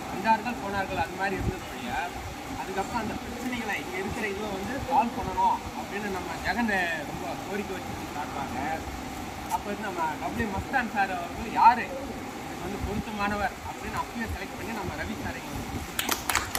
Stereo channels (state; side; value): identical; both; correlation 1.00